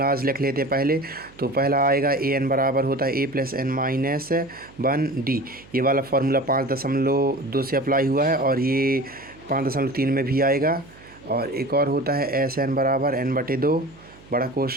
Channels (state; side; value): noise; right; hum, 24 dB below the sound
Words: लिख लेते हैं पहले। तो पहला आएगा ए एन बराबर होता है ए प्लस एन माइनस 1 डी। ये वाला फार्मूला 5.2 से अप्लाई हुआ है और ये 5.3 में भी आएगा। और एक और होता है एस एन बराबर एन बटे 2 बड़ा